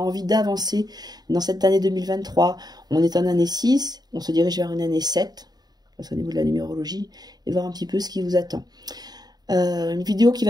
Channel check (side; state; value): left; late; 0.19 ms